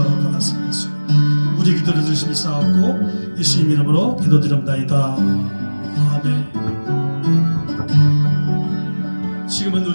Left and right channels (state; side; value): inverted; both; correlation -1.00